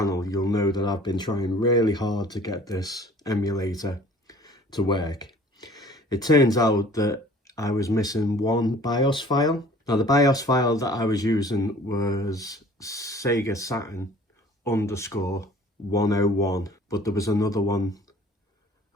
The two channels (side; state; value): both; normal; correlation 0.50